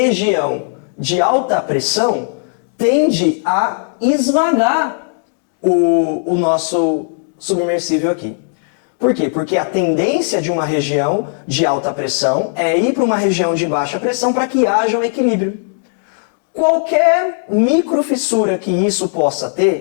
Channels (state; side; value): silent; right; digital silence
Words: de alta pressão tende a esvagar o nosso submersível aqui. Por quê? Porque a tendência de uma região de alta pressão é ir para uma região de baixa pressão para que haja um equilíbrio. Qualquer microfissura que isso possa